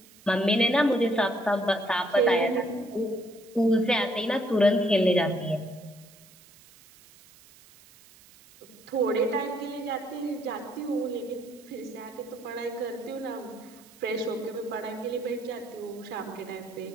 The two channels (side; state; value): right; noise; hiss, 24 dB below the sound